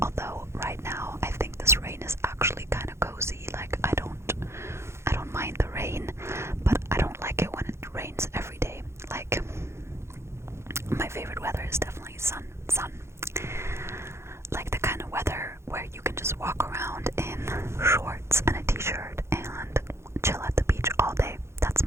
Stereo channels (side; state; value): left; late; 0.13 ms